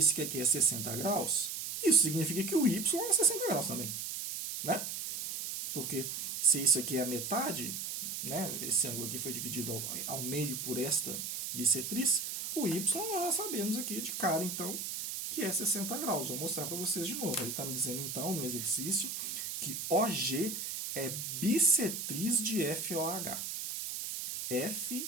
que aqui é 60 graus, isso significa que o y é 60 graus também, né? Porque se isso aqui é a metade, né, esse ângulo aqui foi dividido ao meio por esta bissetriz, o y nós já sabemos aqui de cara, então, que é 60 graus. Vou mostrar para vocês de novo. Ele está me dizendo, então, no exercício, que OG é bissetriz de FOH.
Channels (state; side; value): noise; right; hiss, 4 dB below the sound